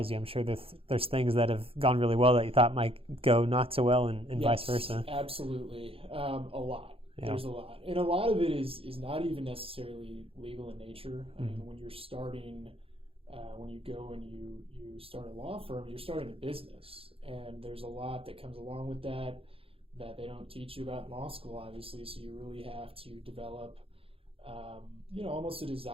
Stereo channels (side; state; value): left; late; 0.27 ms